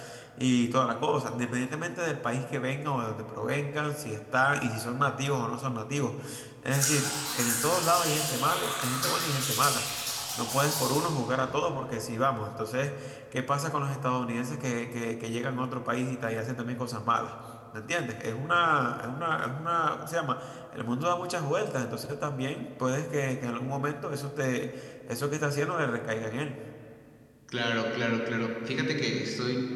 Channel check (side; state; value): both; identical; correlation 1.00